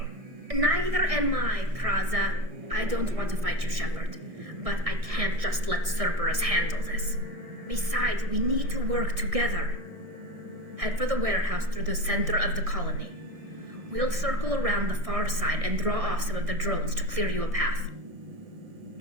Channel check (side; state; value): left; late; 1.6 ms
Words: Neither am I, Praza. I don't want to fight you, Shepard. But I can't just let Cerberus handle this. Besides, we need to work together. Head for the warehouse through the center of the colony. We'll circle around the far side and draw off some of the drones to clear you a path.